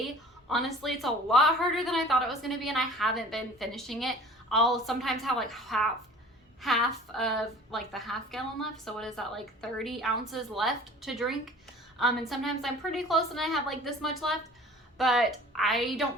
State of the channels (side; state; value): both; normal; correlation 0.45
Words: Honestly, it's a lot harder than I thought it was going to be, and I haven't been finishing it. I'll sometimes have like half of like the half gallon left. So what is that, like 30 ounces left to drink? And sometimes I'm pretty close and I have like this much left. But I